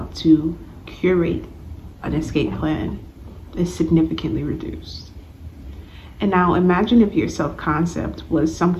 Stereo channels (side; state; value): both; identical; correlation 1.00